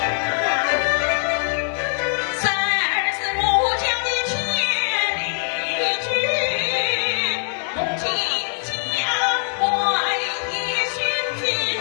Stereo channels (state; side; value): silent; right; 59 dB below the other